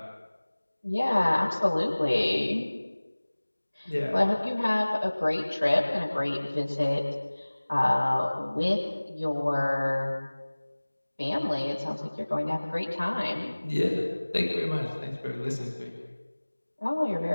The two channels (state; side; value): inverted; both; correlation -1.00